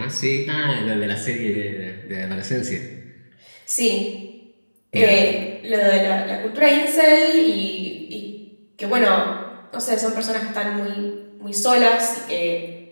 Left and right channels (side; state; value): both; inverted; correlation -1.00